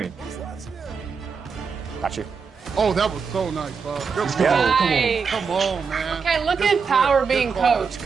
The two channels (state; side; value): quieter; left; 5.6 dB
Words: Got you. Oh, that was so nice, Bob. Good Let's go. go. Nice. Come on, man. Okay, look Good at flip. Power Good being call.